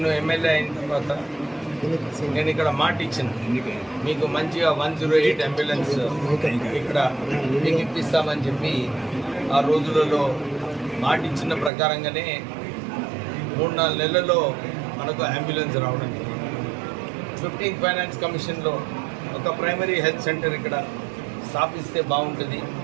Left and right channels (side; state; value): left; drops out; at 11.7 s